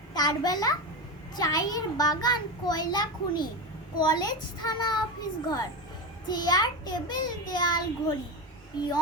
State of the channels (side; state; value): both; normal; correlation 0.18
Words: তার বেলা চায়ের বাগান, কয়লা খনি, কলেজ, থানা, অফিস ঘর, চেয়ার টেবিল, দেয়াল ঘড়ি,